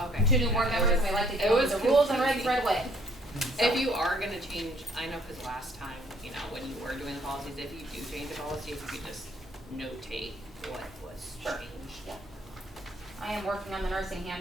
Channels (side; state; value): both; normal; correlation 0.63